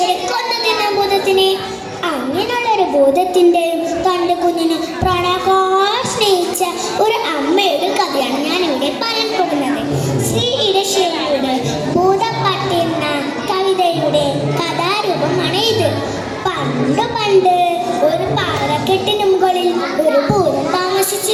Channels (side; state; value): both; identical; correlation 1.00